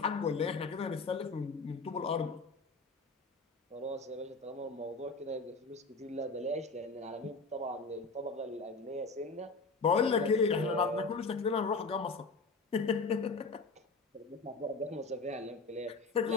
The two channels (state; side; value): quieter; right; 4.0 dB